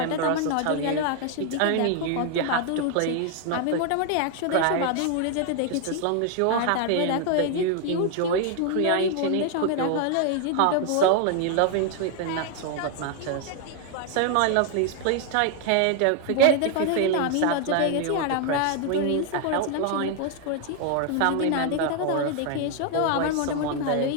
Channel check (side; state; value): both; different; correlation 0.00